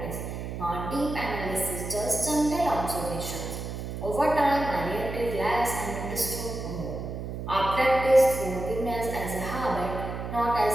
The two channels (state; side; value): noise; right; hum, 6 dB below the sound